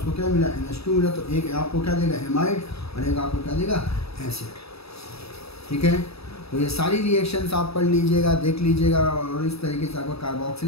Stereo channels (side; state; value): right; late; 0.78 ms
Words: क्या मिला, NH2 मिला, तो एक आपको क्या देगा, हेमाइड, और एक आपको क्या देगा, एसिड। ठीक है, तो ये सारी रिएक्शंस आप पढ़ लीजिएगा, देख लीजिएगा, और इस तरीके से आपका